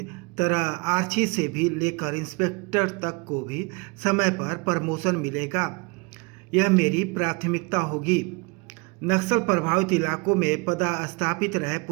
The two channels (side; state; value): left; quieter; 29.3 dB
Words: तरह आरक्षी से भी लेकर इंस्पेक्टर तक को भी समय पर प्रमोशन मिलेगा। यह मेरी प्राथमिकता होगी। नक्सल प्रभावित इलाकों में पदस्थापित रहे